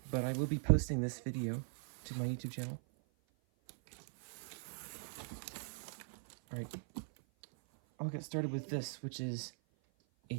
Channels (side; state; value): left; silent; 51 dB below the other